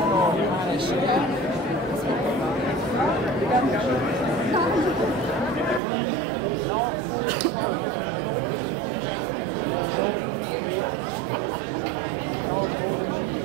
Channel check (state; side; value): drops out; left; at 5.8 s